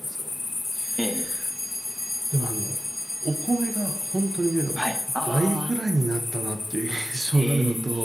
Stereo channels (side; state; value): both; normal; correlation 0.96